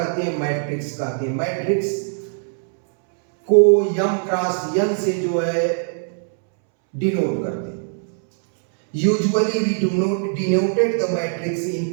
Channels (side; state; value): left; silent; 65 dB below the other